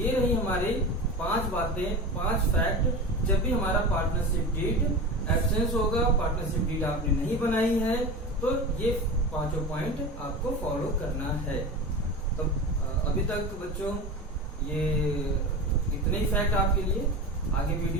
रही हमारी 5 बातें, 5 फैक्ट। जब भी हमारा पार्टनरशिप डीड एब्सेंस होगा, पार्टनरशिप डीड आपने नहीं बनाई है, तो ये 5 पॉइंट आपको फॉलो करना है। तो अभी तक बच्चों ये इतने ही फैक्ट आपके लिए। आगे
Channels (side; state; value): both; normal; correlation 0.28